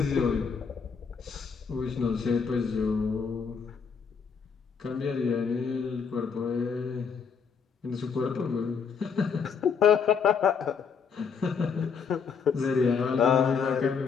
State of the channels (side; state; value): right; quieter; 6.1 dB